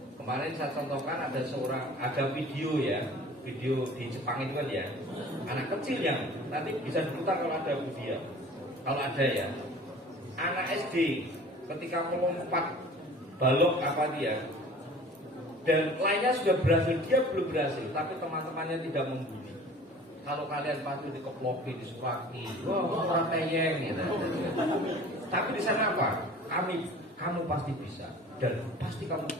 Kemarin saya contohkan ada video di Jepang itu kan ya, anak kecil yang nanti bisa diputar kalau ada video, kalau ada ya, anak SD ketika melompat balok dan lainnya sudah berhasil, dia belum berhasil, tapi teman-temannya tidak membuli. Kalau kalian pasti dikeploki, disuraki, orang teyeng gitu. Tapi di sana apa? Kamu pasti bisa, dan pasti kamu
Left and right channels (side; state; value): both; normal; correlation 0.45